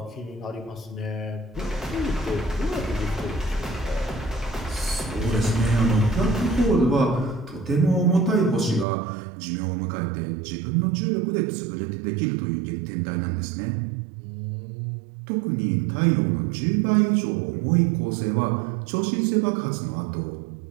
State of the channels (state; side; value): drops out; left; at 8.8 s